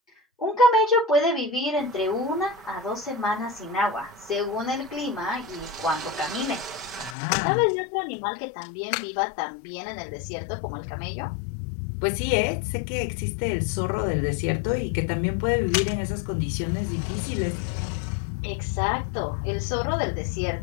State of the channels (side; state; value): right; drops out; at 7.2 s